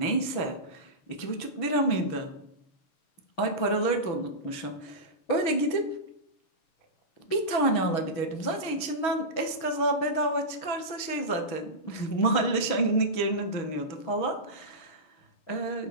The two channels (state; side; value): late; right; 6.2 ms